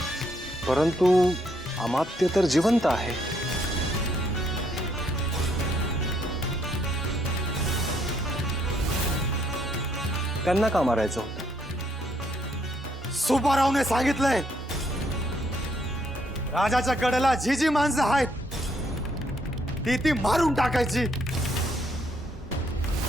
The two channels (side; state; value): both; normal; correlation 0.71